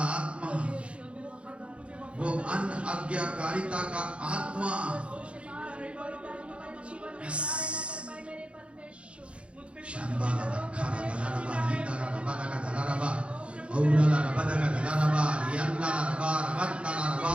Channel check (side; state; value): left; late; 0.060 ms